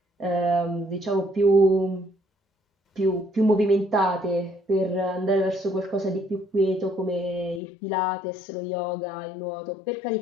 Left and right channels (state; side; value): drops out; right; at 7.6 s